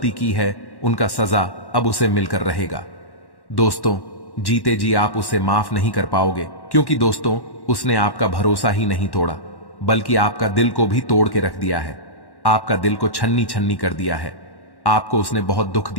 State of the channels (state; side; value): late; right; 1.1 ms